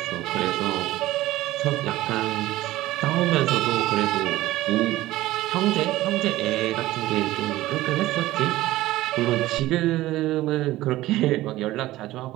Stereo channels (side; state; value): left; quieter; 16.5 dB